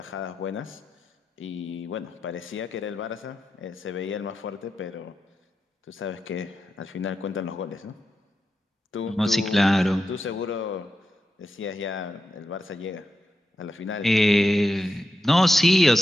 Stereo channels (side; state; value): both; normal; correlation 0.88